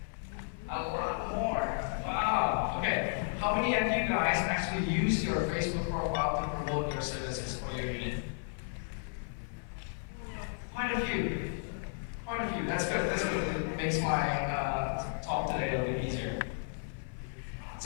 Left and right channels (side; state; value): right; silent; 55 dB below the other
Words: A lot more. Wow. Okay. How many of you guys actually use your Facebook profile to promote your services or your unit? Quite a few. Quite a few. That's good. That's good. It makes my talk today a little bit easier.